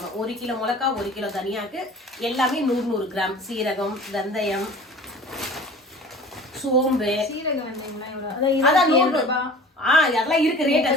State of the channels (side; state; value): both; normal; correlation 0.43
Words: 1 கிலோ மிளகா, 1 கிலோ தனியாக்கு, எல்லாமே 100 கிராம். சீரகம், வெந்தயம், சோம்பு, அதான் 100. அதெல்லாம் இருக்கு ரேட்.